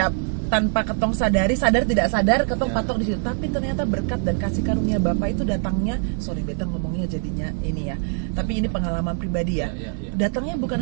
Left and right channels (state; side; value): silent; left; 58 dB below the other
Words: tanpa ketong sadar tidak sadar ketong patok di situ. Tapi ternyata berkat dan kasih karunia Bapa itu datangnya, sorry beta ngomongnya jadinya ini ya. Tapi ini pengalaman pribadi ya. Datangnya bukan